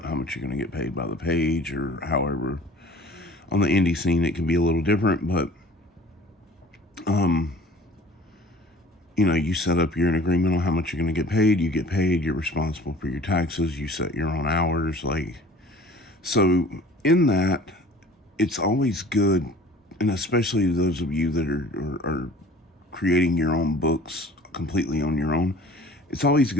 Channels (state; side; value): normal; both; correlation 0.47